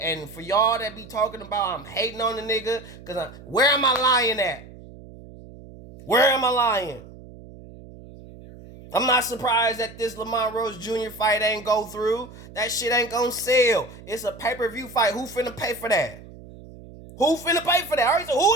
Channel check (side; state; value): right; noise; hum, 18 dB below the sound